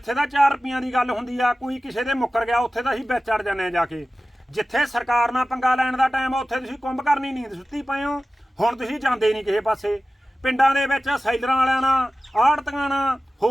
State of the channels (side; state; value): both; normal; correlation 0.96